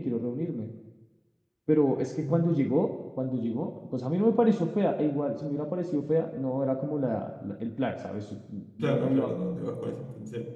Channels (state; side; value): identical; both; correlation 1.00